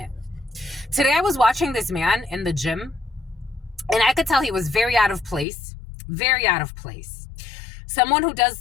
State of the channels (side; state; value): right; drops out; at 5.5 s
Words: Today I was watching this man in the gym, and I could tell he was very out of place. Very out of place. Someone who does